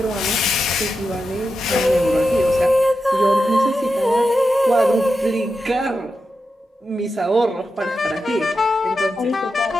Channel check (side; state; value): both; normal; correlation 0.89